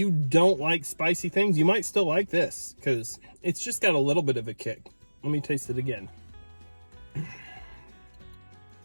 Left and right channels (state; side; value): inverted; both; correlation -1.00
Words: don't like spicy things, you might still like this because it's just got a little bit of a kick. Let me taste it again.